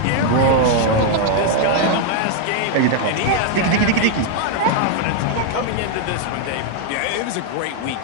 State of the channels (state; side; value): different; both; correlation 0.00